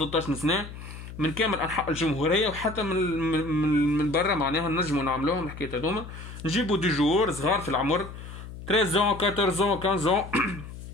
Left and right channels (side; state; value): left; noise; hum, 12 dB below the sound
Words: سنه من كامل انحاء الجمهوريه وحتى من برا معناها نجمو نعملوهم الحكايات هذوما. نجيبو دي جوور صغار في العمر 13 14 15